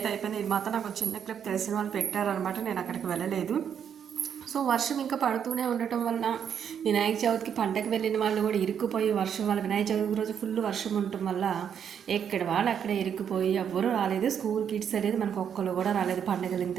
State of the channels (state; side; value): quieter; left; 8.2 dB